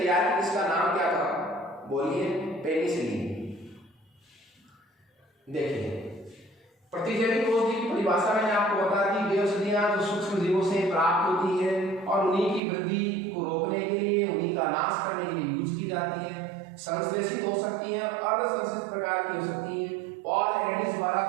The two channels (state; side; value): drops out; left; at 12.6 s